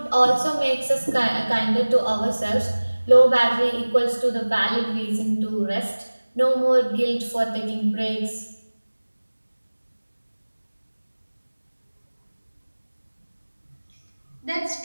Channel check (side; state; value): both; inverted; correlation -1.00